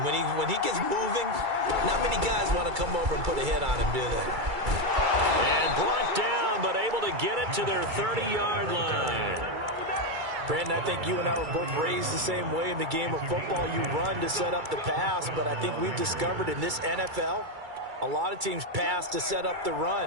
when he gets moving, not many guys want to come over and put a hit on him, do they? And brought down, but able to get it to their 30-yard line. Brandon, I think you and I were both raised the same way in the game of football. You run to set up the pass, but I think we've discovered in this NFL, a lot of teams pass to set up the run.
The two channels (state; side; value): late; left; 2.3 ms